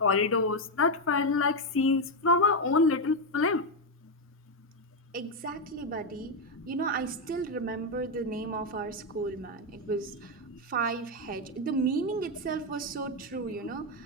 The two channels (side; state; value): both; normal; correlation 0.05